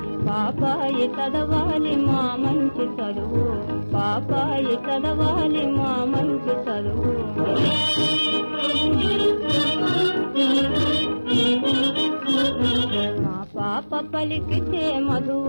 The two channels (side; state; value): both; inverted; correlation -1.00